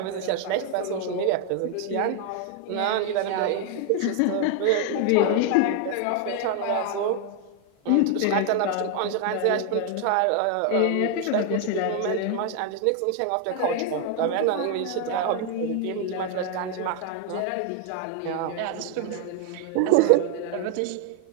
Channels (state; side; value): different; both; correlation 0.00